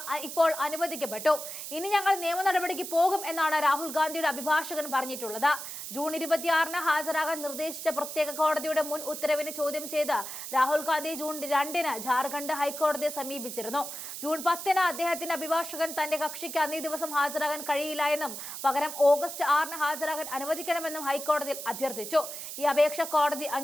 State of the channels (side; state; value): right; noise; hiss, 8 dB below the sound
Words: ഇപ്പോൾ അനുവദിക്കപ്പെട്ടു. ഇനി ഞങ്ങൾ നിയമ നടപടിക്ക് പോകും എന്നാണ് രാഹുൽ ഗാന്ധിയുടെ അഭിഭാഷകൻ പറഞ്ഞിട്ടുള്ളത്. ജൂൺ 26-ന് ഹാജരാകാൻ നിർദ്ദേശിച്ച പ്രത്യേക കോടതിയുടെ മുൻ ഉത്തരവിനെ ചോദ്യം ചെയ്ത് രാഹുൽ ഗാന്ധി ജൂൺ 2-ന് ജാർഖണ്ഡ് ഹൈക്കോടതിയെ സമീപിച്ചിരുന്നു. ജൂൺ 10-ന് അദ്ദേഹത്തിന്റെ അഭിഭാഷകൻ തന്റെ കക്ഷിക്ക് അന്നേ ദിവസം ഹാജരാകാൻ കഴിയില്ല എന്നും പകരം ഓഗസ്റ്റ് 6-ന് ഹാജരാകാൻ അനുവദിക്കണമെന്നും ഹൈക്കോടതിയിൽ അഭ്യർത്ഥിച്ചു. ഈ അപേക്ഷ കോടതി